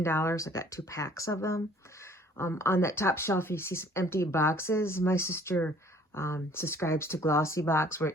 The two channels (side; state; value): both; normal; correlation 0.56